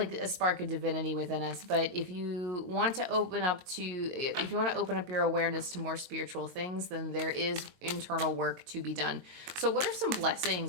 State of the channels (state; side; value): late; left; 22 ms